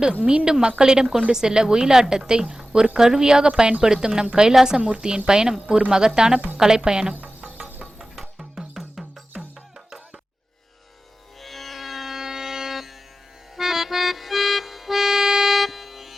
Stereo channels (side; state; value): both; normal; correlation 0.95